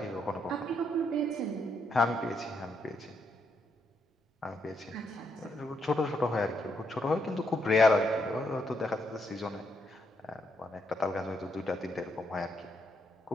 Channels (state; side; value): normal; both; correlation 0.77